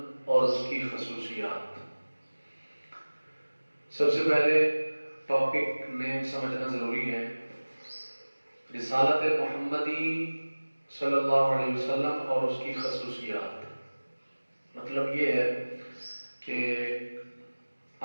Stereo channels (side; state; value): both; inverted; correlation -1.00